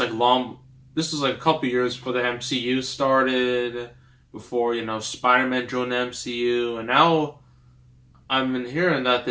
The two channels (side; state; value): both; identical; correlation 1.00